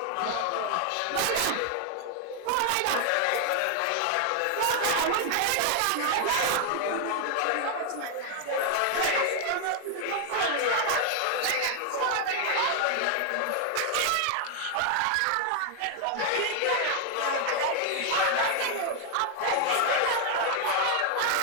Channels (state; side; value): different; both; correlation 0.00